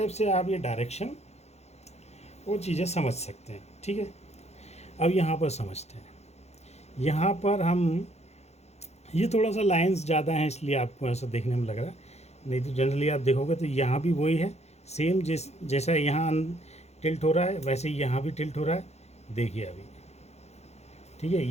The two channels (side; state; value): right; late; 0.31 ms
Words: से आप ये डायरेक्शन वो चीज़ें समझ सकते हैं, ठीक है। अब यहाँ पर समझते हैं, यहाँ पर हम ये थोड़ा सा लाइंस ज़्यादा हैं इसलिए आपको ऐसा देखने में लग रहा है, नहीं तो जनरली आप देखोगे तो यहाँ भी वही है सेम, जैसा यहाँ टिल्ट हो रहा है वैसे ही यहाँ भी टिल्ट हो रहा है। देखिए अभी, ठीक है,